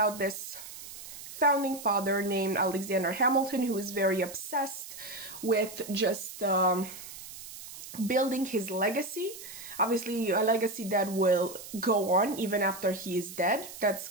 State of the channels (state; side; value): noise; right; hiss, 13 dB below the sound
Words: this founding father named Alexander Hamilton, who is very obsessed with just building his legacy. Obviously, a legacy that will go on even after he is dead. That's